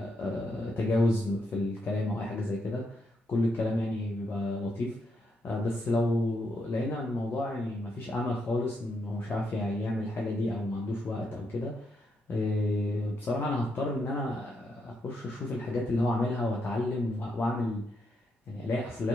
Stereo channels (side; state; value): both; normal; correlation 0.80